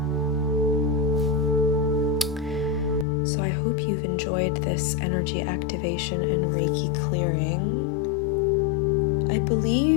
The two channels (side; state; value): right; drops out; at 3.1 s